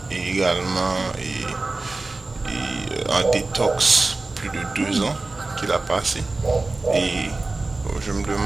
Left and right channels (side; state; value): left; quieter; 3.4 dB